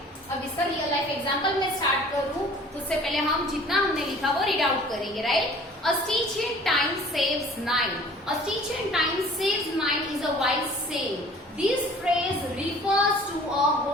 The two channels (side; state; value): both; normal; correlation 0.49